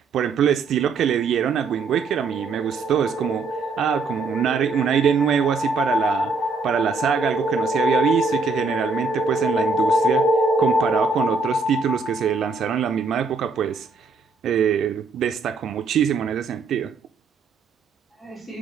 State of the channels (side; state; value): left; quieter; 4.2 dB